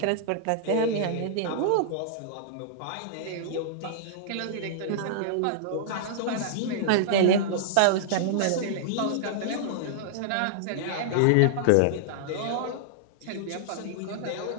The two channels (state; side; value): different; both; correlation -0.02